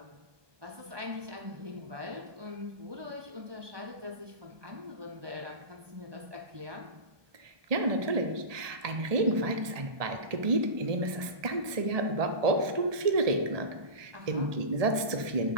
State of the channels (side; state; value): left; late; 1.2 ms